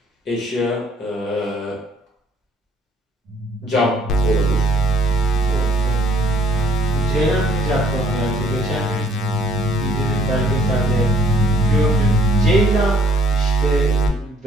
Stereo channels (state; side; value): normal; both; correlation 0.61